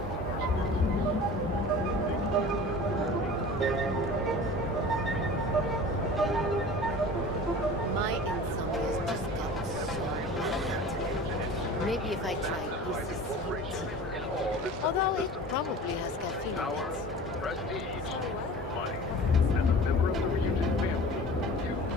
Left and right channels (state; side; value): normal; both; correlation 0.39